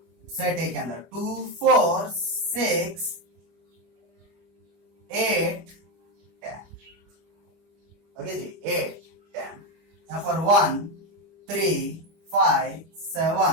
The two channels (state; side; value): late; left; 25 ms